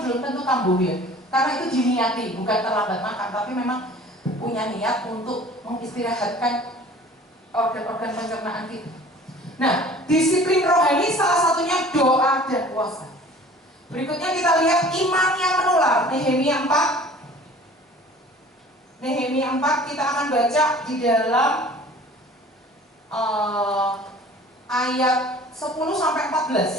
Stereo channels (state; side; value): normal; both; correlation 0.47